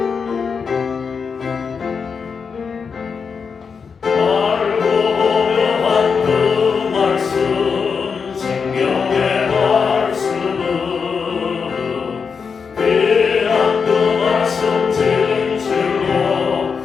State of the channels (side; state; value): right; quieter; 5.8 dB